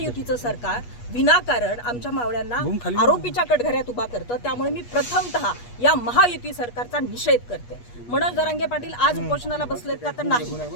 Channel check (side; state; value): right; late; 8.3 ms